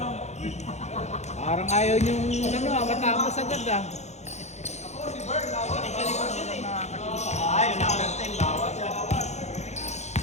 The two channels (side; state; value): right; late; 0.33 ms